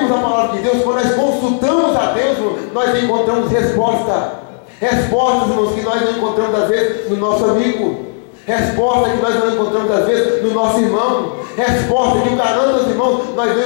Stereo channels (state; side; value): silent; right; digital silence